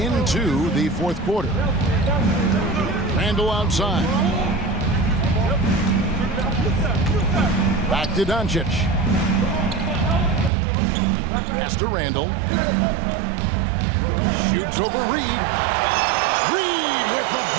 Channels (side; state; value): left; drops out; at 10.5 s